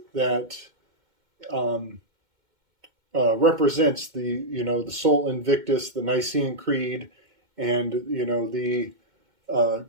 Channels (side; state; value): left; late; 2.2 ms